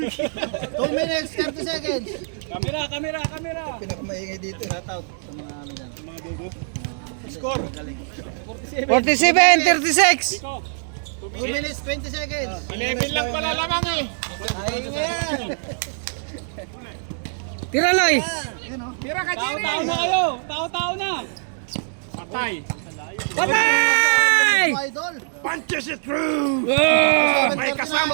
2 minutes, 30 seconds. Kamera, kamera, kamera. Pinakamaingay dito. Shout out sa mga ano dyan. Mga dugo. Score. Galing. 47, 36. 2 minutes, 20 seconds. 11 lang pala lamang eh! Ayun yan. Tira, Loy. Tira ka, Jerry! Tao-tao na kayo. Tao-tao na. Patay! Patay! Idol. Punches it through! May kasama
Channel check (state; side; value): silent; left; digital silence